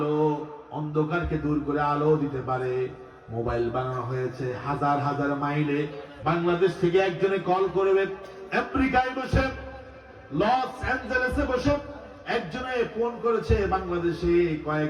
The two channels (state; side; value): identical; both; correlation 1.00